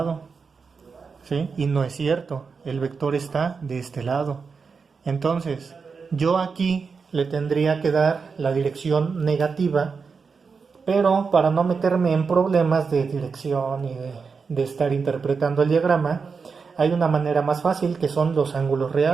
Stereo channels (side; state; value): left; quieter; 5.2 dB